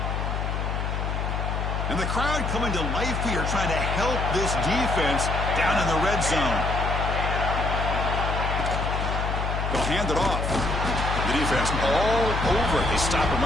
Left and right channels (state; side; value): noise; left; hum, 1 dB below the sound